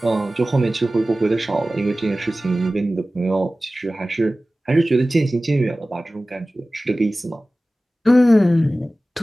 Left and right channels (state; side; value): normal; both; correlation 0.97